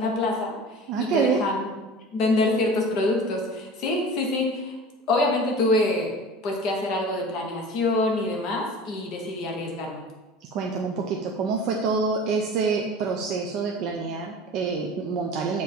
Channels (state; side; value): normal; both; correlation 0.38